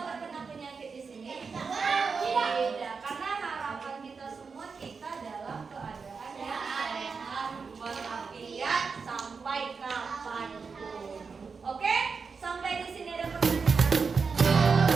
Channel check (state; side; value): quieter; left; 5.1 dB